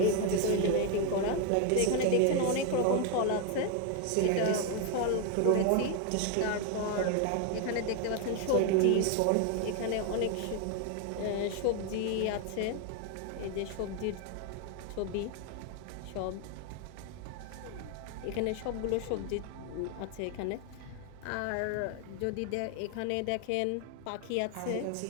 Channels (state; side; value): different; both; correlation 0.01